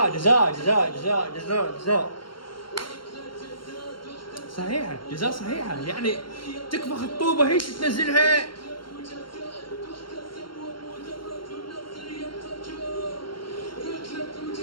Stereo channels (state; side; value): late; right; 0.73 ms